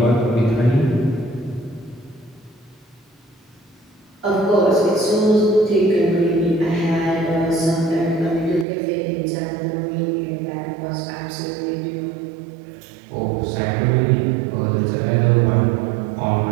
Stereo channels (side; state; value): left; drops out; at 8.7 s